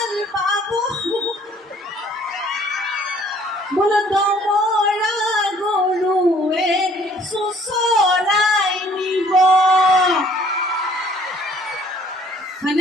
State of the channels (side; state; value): both; normal; correlation 0.58